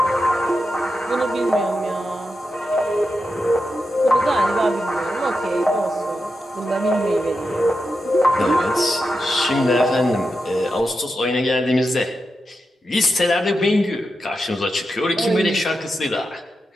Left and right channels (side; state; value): both; normal; correlation 0.88